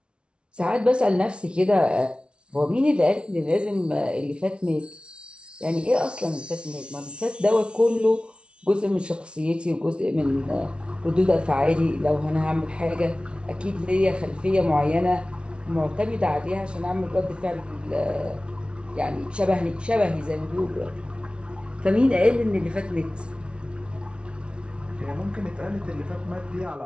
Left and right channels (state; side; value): late; left; 0.058 ms